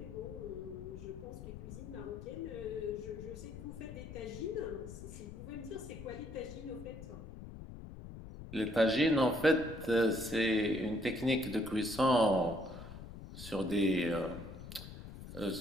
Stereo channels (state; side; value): noise; left; rumble, 12 dB below the sound